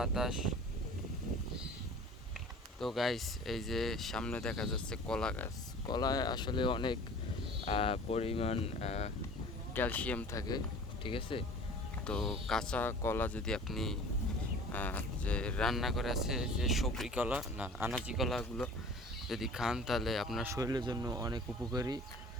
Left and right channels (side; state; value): both; normal; correlation 0.44